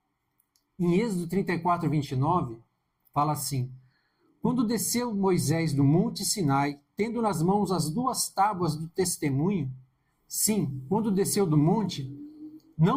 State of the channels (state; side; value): identical; both; correlation 1.00